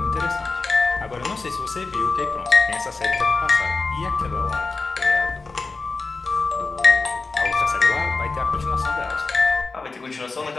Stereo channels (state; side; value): quieter; right; 3.9 dB